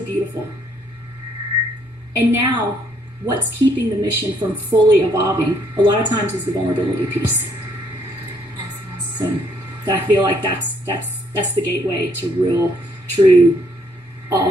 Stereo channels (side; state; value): both; normal; correlation 0.69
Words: beautiful. And now, what's keeping the mission from fully evolving a lot of times is the vulnerability piece. So I feel like that's the gateway to real, true,